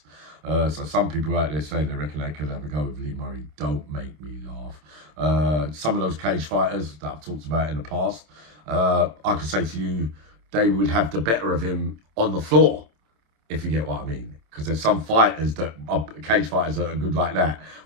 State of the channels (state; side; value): late; left; 27 ms